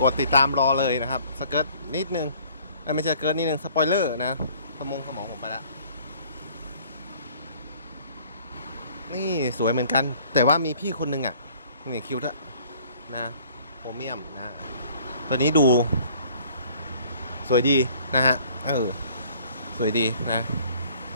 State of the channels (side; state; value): both; inverted; correlation -0.56